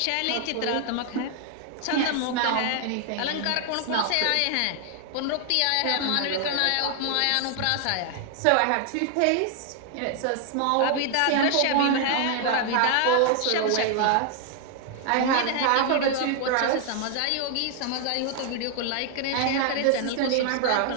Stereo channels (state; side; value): different; both; correlation 0.00